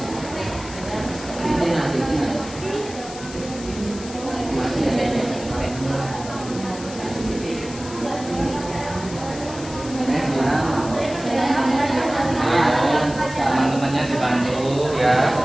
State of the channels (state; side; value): noise; left; hiss, 14 dB below the sound